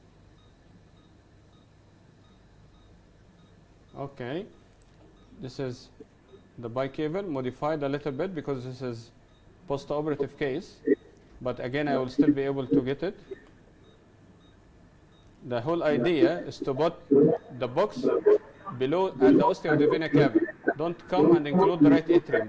Okay, this is the bicable, modified a little bit because this is post-operative case, but again I will still be able to get it. The whole idea is to put the box below at the ostia of the vena cava. Don't come and include the right atrium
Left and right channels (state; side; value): identical; both; correlation 1.00